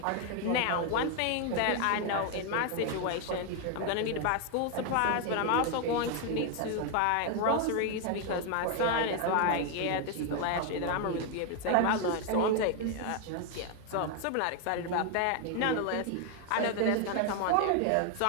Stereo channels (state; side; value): different; both; correlation 0.01